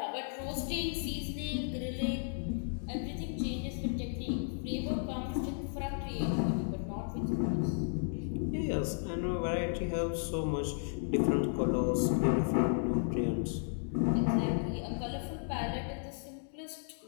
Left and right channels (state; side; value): silent; right; digital silence